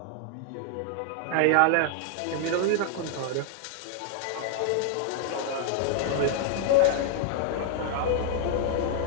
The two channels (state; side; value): different; both; correlation 0.00